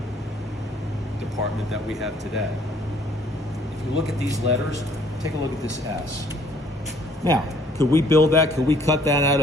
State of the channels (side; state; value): both; normal; correlation 0.60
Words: department that we have today. If you look at these letters, take a look at this S. Now, could we build that? Could we cut that out